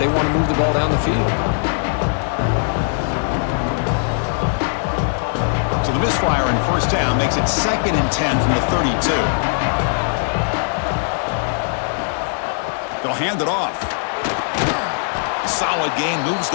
want to move the ball down the field. So the misfire on first down makes it 2nd and 10 from the 32. hand it off. Solid gain, moves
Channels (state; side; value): silent; right; digital silence